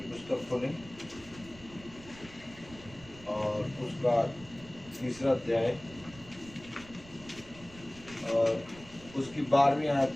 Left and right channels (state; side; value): noise; right; rumble, 19 dB below the sound